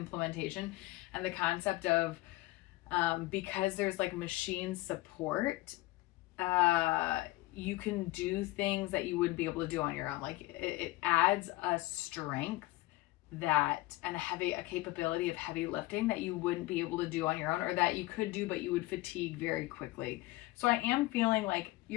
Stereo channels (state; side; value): quieter; right; 19.3 dB